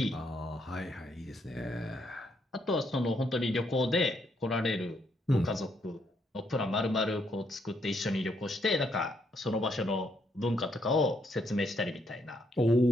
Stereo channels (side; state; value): both; normal; correlation 0.74